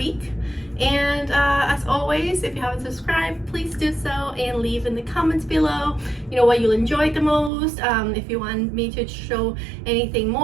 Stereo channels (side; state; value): left; drops out; at 7.5 s